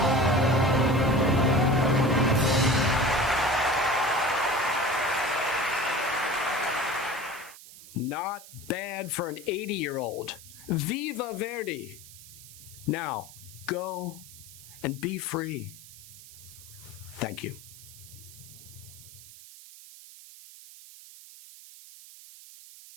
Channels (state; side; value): noise; right; hiss, 18 dB below the sound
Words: Not bad for an 80-year-old. Viva Verdi! Now, go and be free. Thank you.